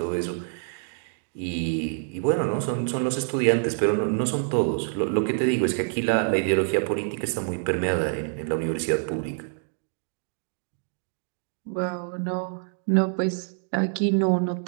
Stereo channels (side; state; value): left; silent; digital silence